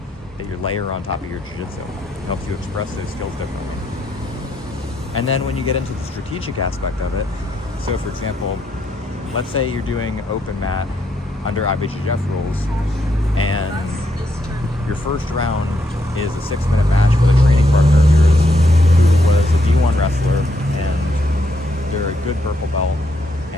that you layer on top of your jiu-jitsu. It helps you express those skills differently. And then when you get into the strategic aspect of it, so for example, let's say you're doing open mat under IBJJF rules, and your first round is a 6-minute match with a training partner of yours who was a D1 wrestler, and they're a good purple belt,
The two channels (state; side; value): normal; both; correlation 0.77